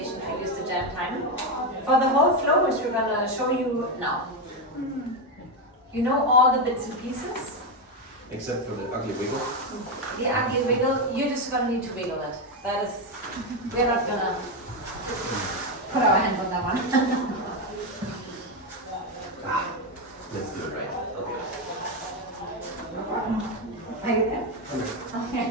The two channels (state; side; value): normal; both; correlation 0.09